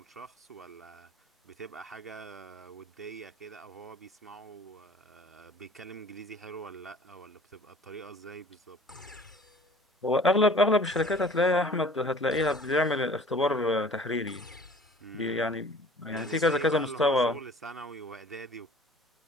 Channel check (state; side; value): normal; both; correlation 0.48